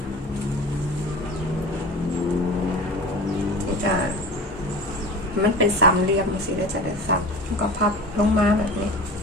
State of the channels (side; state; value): both; normal; correlation 0.35